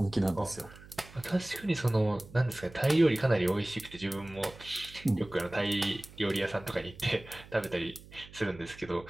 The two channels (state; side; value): noise; right; hum, 20 dB below the sound